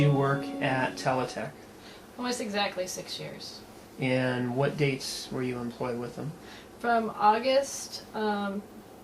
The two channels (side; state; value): both; identical; correlation 1.00